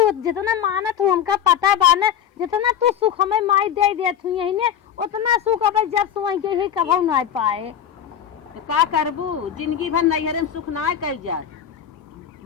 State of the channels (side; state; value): right; quieter; 9.4 dB